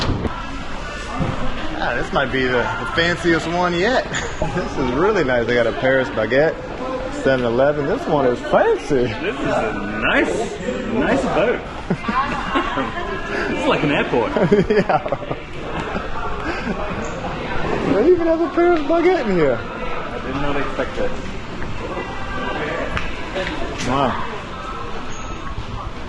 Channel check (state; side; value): identical; both; correlation 1.00